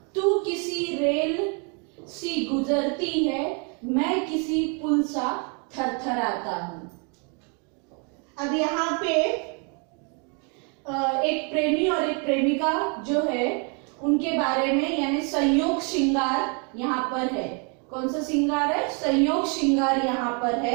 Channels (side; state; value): left; quieter; 36.3 dB